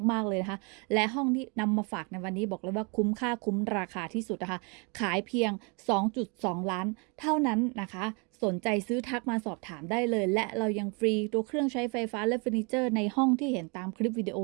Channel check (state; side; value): quieter; left; 32.9 dB